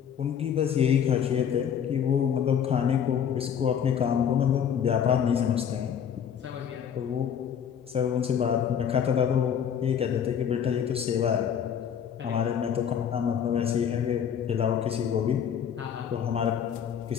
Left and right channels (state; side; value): quieter; right; 8.3 dB